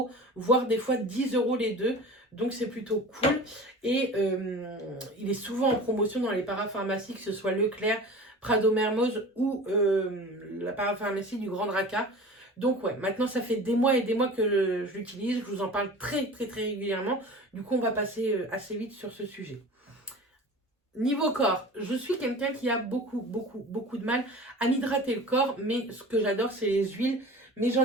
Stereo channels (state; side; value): normal; both; correlation 0.38